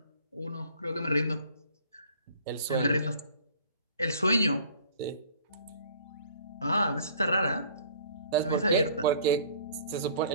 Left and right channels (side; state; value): both; inverted; correlation -0.53